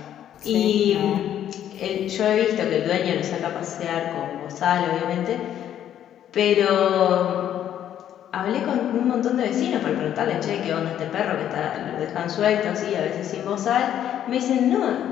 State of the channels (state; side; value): quieter; right; 10.6 dB